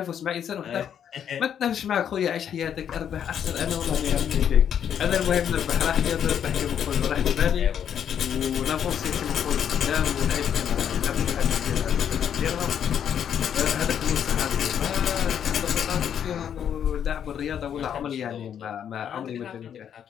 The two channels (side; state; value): right; quieter; 8.9 dB